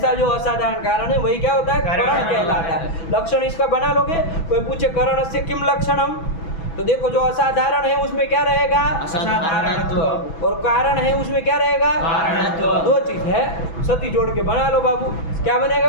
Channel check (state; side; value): late; right; 6.0 ms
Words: जो असाधारण कारण है वही क्या होता है? करण कहलाता है। लक्षण इसका बना लोगे। कोई पूछे करण से किम लक्षणम, तो देखो जो असाधारण है उसमें क्या रहेगा? असाधारणत्व। और कारण है उसमें क्या रहेगा? कारणत्व। 2 चीज है, सती जोड़ के बना लो बाबू। क्या